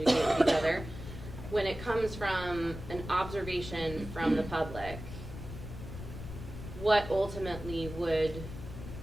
with each other. When it comes from an observation from the public, what ultimately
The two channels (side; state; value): left; noise; rumble, 10 dB below the sound